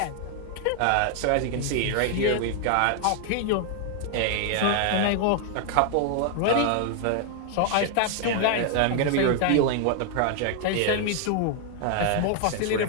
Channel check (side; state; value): both; different; correlation 0.00